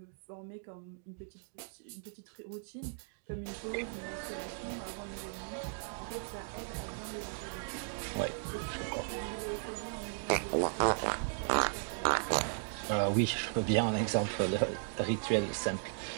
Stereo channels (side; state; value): left; silent; digital silence